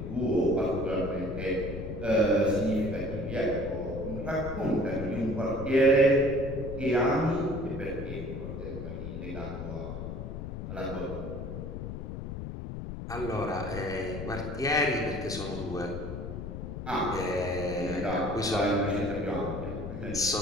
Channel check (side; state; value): left; noise; rumble, 7 dB below the sound